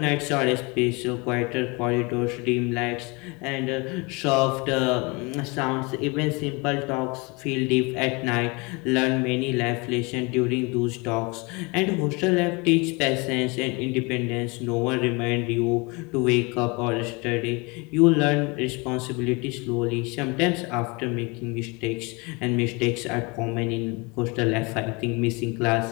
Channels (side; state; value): right; quieter; 28.0 dB